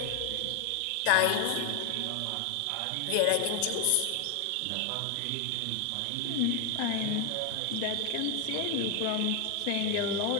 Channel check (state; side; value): different; both; correlation 0.01